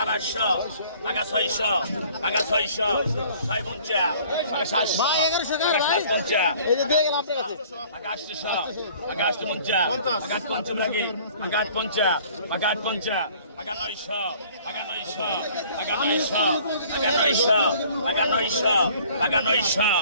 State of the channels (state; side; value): inverted; both; correlation -0.53